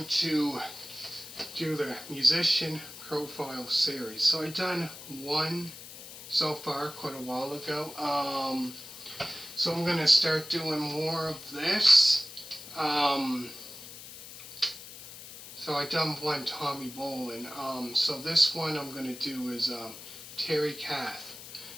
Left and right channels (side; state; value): left; noise; hiss, 14 dB below the sound